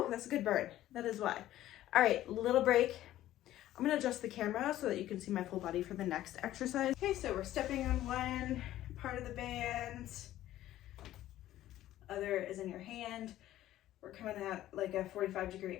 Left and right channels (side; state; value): right; quieter; 13.9 dB